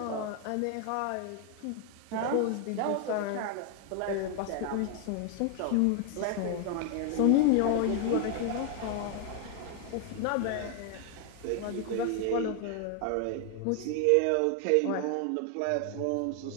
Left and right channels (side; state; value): both; different; correlation 0.00